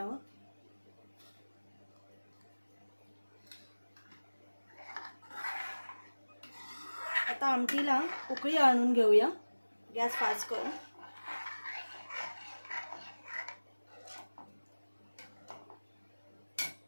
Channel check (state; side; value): inverted; both; correlation -1.00